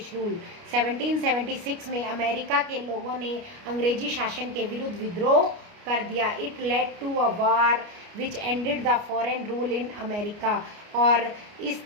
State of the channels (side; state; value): left; late; 29 ms